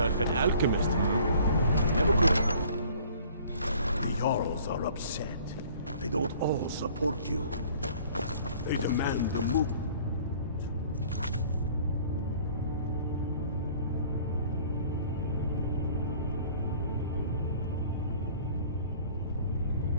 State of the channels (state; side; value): inverted; both; correlation -0.52